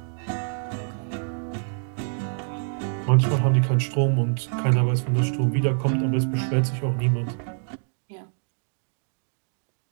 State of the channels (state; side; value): silent; left; 56 dB below the other